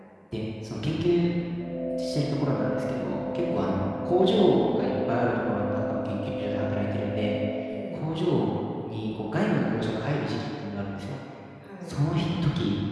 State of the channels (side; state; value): both; identical; correlation 1.00